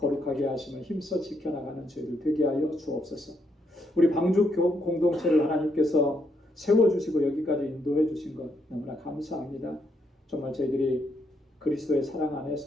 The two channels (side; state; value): both; normal; correlation 0.76